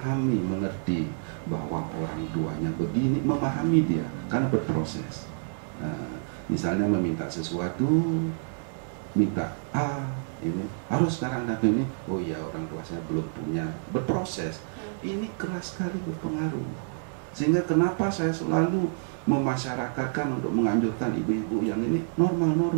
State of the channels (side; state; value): left; silent; digital silence